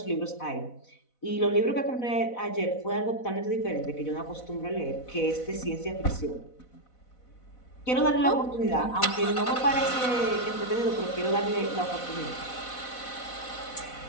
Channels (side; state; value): right; late; 4.0 ms